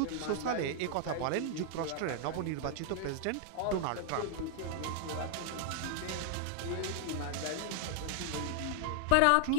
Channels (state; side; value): different; both; correlation 0.00